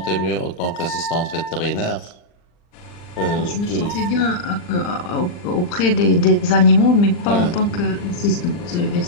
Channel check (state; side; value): late; right; 40 ms